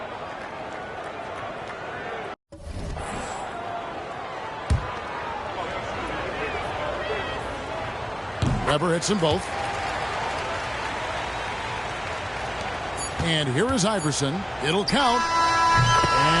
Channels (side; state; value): both; identical; correlation 1.00